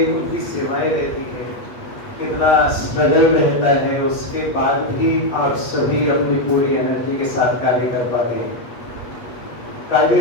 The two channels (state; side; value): late; right; 8.3 ms